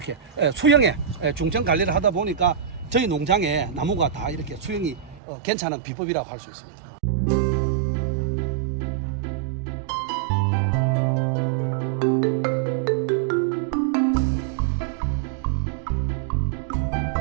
수영에 중점 관리를 하다 보니까 저희 농장에 나무가 다 이렇게 수영이 괜찮은 비법이라고 할 수 있습니다.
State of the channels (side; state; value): left; drops out; at 5.2 s